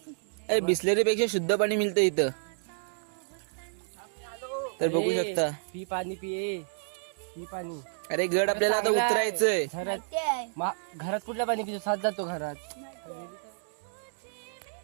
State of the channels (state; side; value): silent; left; digital silence